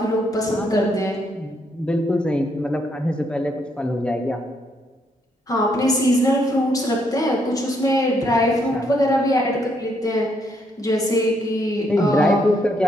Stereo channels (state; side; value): normal; both; correlation 0.74